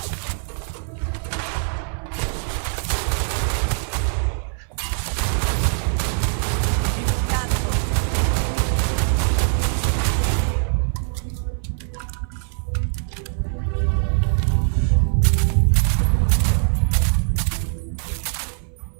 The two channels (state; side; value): silent; left; 58 dB below the other